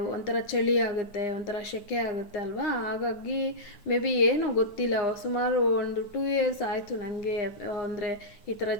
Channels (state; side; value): late; right; 9.8 ms